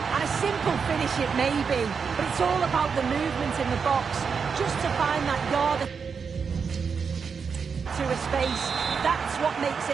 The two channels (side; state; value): left; quieter; 5.9 dB